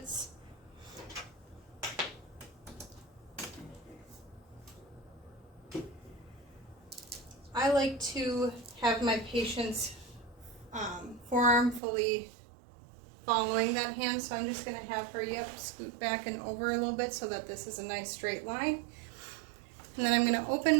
I like to have my patient's forearm fully following that hand, so I'm just going to have her, scoot back and over a little bit so that this is a nice straight line. And then I'm going to open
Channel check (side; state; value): left; drops out; at 11.8 s